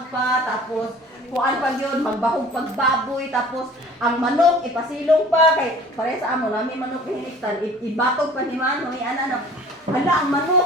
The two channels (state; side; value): normal; both; correlation 0.47